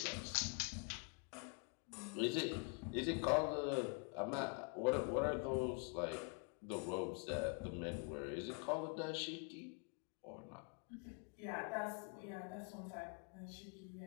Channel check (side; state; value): right; quieter; 38.9 dB